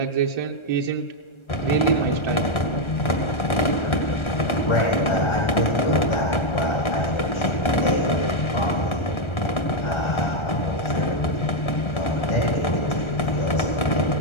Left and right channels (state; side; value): late; right; 1.3 ms